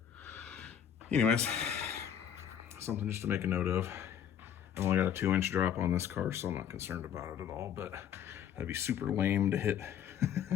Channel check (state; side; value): quieter; right; 9.2 dB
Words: Anyways, something just to make a note of. I've only got a 2-inch drop on this car, so I'm not concerned about it at all, but that'd be super lame to hit